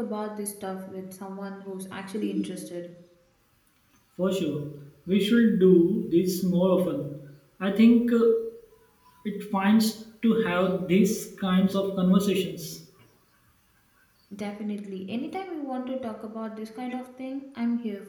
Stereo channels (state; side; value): identical; both; correlation 1.00